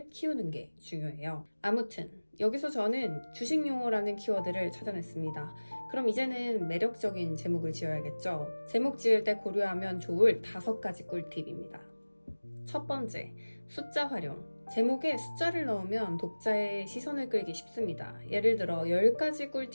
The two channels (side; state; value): both; inverted; correlation -1.00